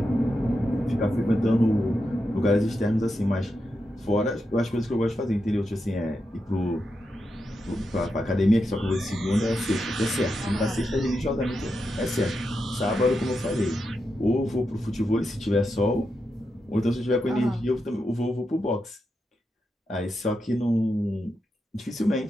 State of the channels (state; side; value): normal; both; correlation 0.86